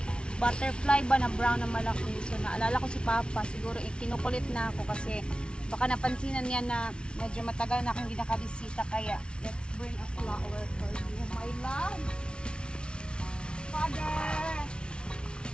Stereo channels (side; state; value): right; late; 0.057 ms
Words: butterfly ba na brown na malaki. So naalala ko si Papa, siguro kinukulit na ako kasi baka napansinan niya na medyo matagal na akong hindi nakabisita, kaya let's bring a flower for you, my love. Father!